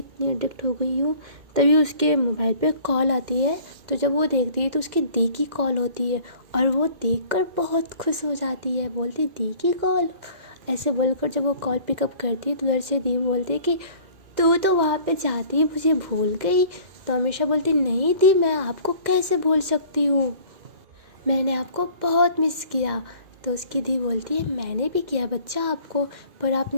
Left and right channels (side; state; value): left; late; 2.0 ms